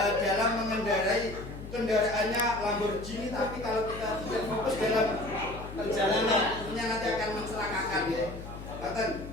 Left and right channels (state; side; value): noise; left; hum, 11 dB below the sound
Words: mengendarai kendaraannya Lamborghini, tapi kalau kita tidak fokus dalam perjalanan tentunya nanti akan mencelakakan ya.